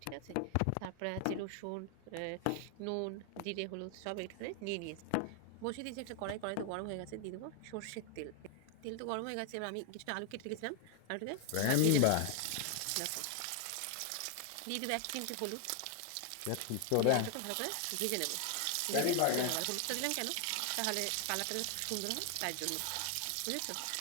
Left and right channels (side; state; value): both; different; correlation 0.00